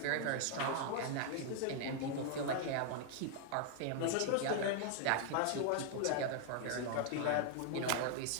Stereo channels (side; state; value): both; different; correlation 0.00